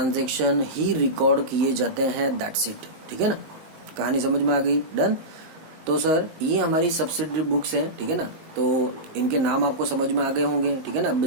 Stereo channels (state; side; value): late; left; 19 ms